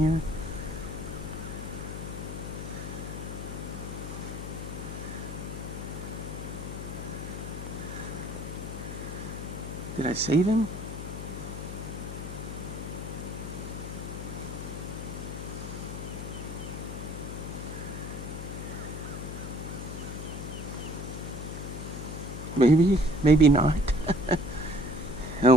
Did I save him? Maybe, maybe not. Oh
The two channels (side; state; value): left; noise; hum, 7 dB below the sound